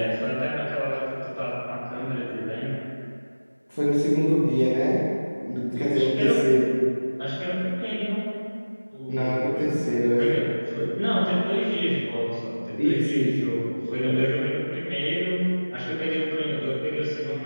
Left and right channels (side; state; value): both; inverted; correlation -1.00